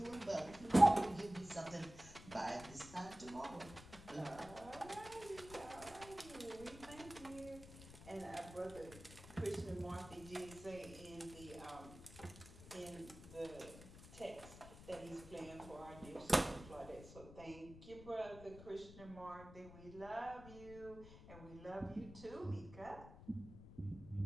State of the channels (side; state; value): left; noise; rumble, 15 dB below the sound